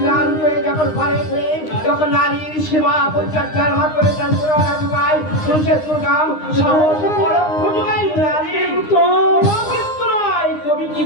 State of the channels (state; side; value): late; right; 9.8 ms